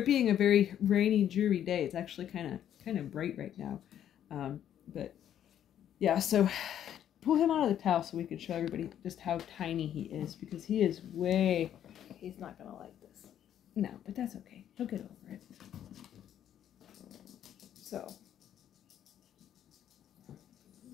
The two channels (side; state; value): right; quieter; 10.4 dB